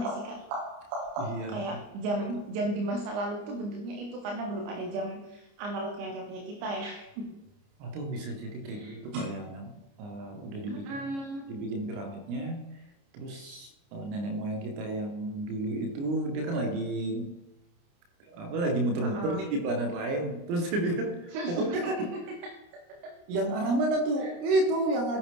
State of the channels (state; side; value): late; left; 29 ms